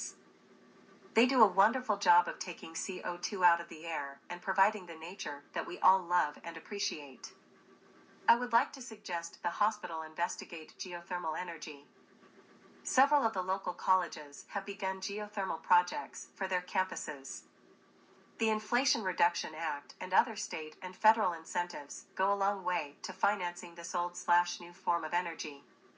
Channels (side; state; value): both; identical; correlation 1.00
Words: They do a wonderful job of taking CO2 out of the air and providing the nature that we all love and appreciate. I would like to suggest the hospital investigate geothermal energy. Several of the local colleges have begun geothermal projects for their campuses. The Inflation Reduction Act and other state and federal incentives go a long way to financing this old/new form of energy.